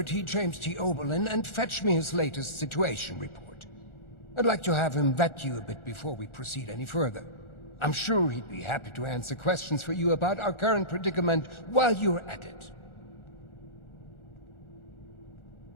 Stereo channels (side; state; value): right; late; 1.4 ms